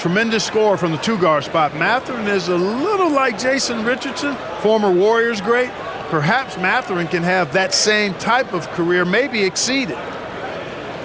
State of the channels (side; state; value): both; identical; correlation 1.00